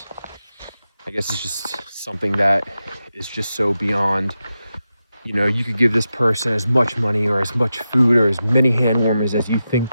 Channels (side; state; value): both; inverted; correlation -0.90